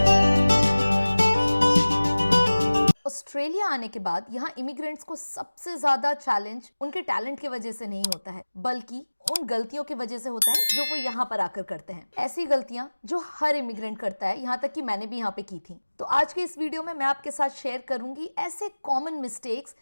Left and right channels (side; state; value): both; inverted; correlation -1.00